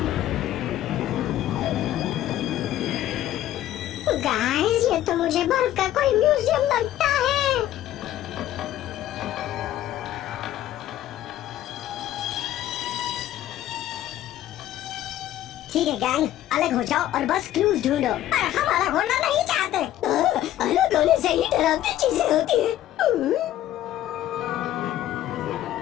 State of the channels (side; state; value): right; quieter; 13.0 dB